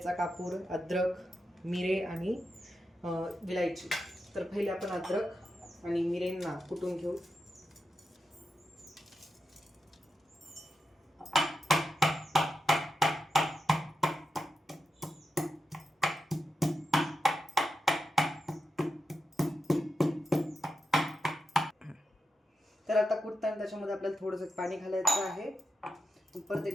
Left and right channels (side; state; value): both; normal; correlation 0.88